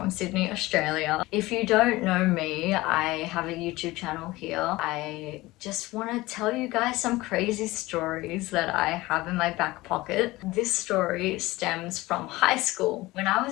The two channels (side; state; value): right; quieter; 19.6 dB